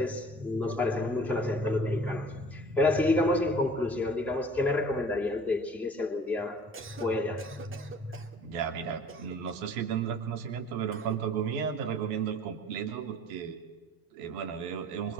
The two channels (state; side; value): normal; both; correlation 0.49